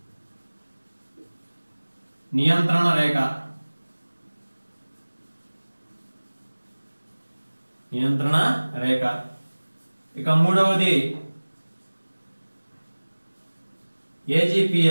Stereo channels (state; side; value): inverted; both; correlation -1.00